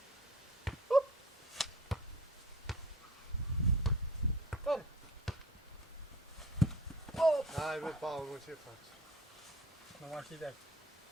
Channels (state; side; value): normal; both; correlation 0.44